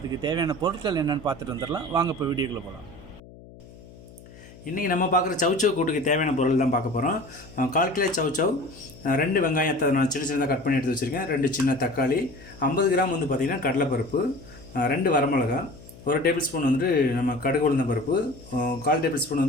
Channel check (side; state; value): left; noise; hum, 20 dB below the sound